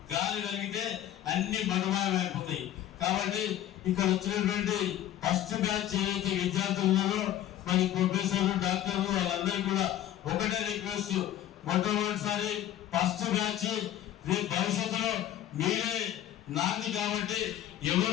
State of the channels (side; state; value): right; quieter; 12.0 dB